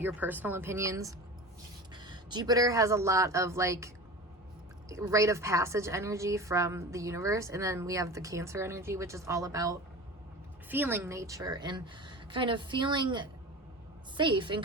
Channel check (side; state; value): both; normal; correlation 0.33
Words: your personal opinions. Jupiter has a lot of like rite of passage energy from the universe, and then we have the Cancer energy, which is all about feeling nature and kind of feeling safe and